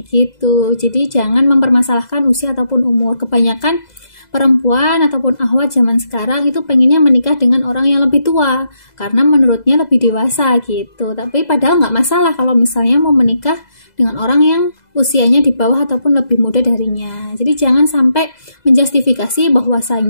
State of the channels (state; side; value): late; right; 2.0 ms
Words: gitu. Jadi jangan mempermasalahkan usia ataupun umur. Kebanyakan perempuan ataupun akhwat zaman sekarang itu pengennya menikah dengan orang yang lebih tua karena menurutnya lebih dewasa gitu. Tapi padahal nggak masalah kalau misalnya mau menikah dengan orang yang usianya di bawah ataupun lebih muda darinya. Jadi jangan sampai menjustifikasi